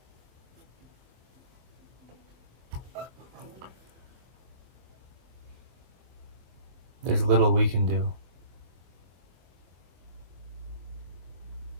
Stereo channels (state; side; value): late; left; 23 ms